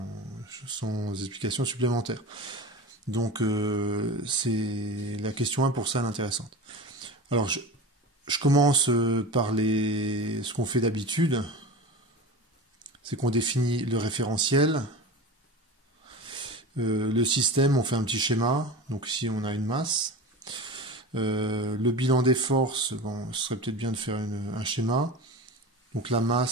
explication supplémentaire. Donc, c'est la question 1 pour ça l'intéressante. Alors, je commence par ce qu'on fait d'habitude. C'est qu'on définit le référentiel. Le système, on fait un petit schéma. Donc ici, on a une masse. Le bilan des forces, bon, ce serait peut-être bien de faire un schéma. Donc la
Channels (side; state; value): both; normal; correlation 0.30